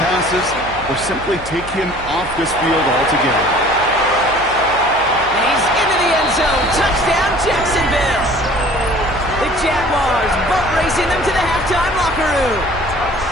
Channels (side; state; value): right; noise; hum, 16 dB below the sound